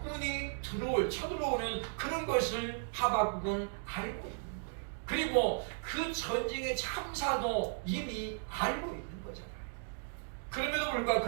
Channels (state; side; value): silent; left; digital silence